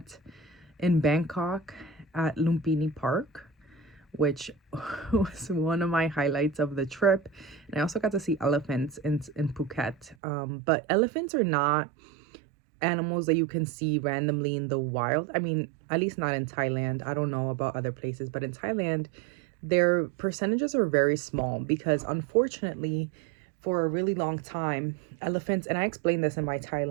in Bangkok at Lumpini Park, which was one of my highlights of the trip. And I also got to see elephants in Phuket. But elephants are not animals that you can see randomly in the wild. I mean, at least not in Thailand. I don't know about other places, but in Thailand, their percentages are very small because unfortunately, for a really long time, elephants, and I explained this in my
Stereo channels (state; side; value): drops out; left; at 10.2 s